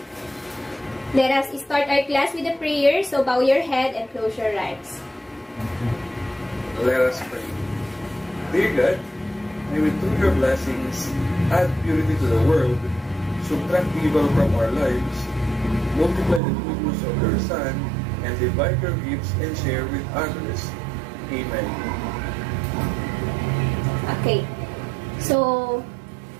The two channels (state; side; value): drops out; left; at 16.4 s